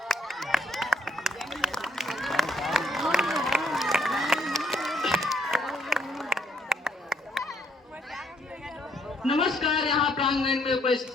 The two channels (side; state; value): both; normal; correlation 0.69